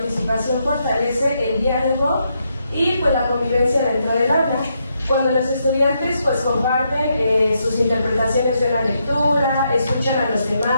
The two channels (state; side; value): inverted; both; correlation -0.79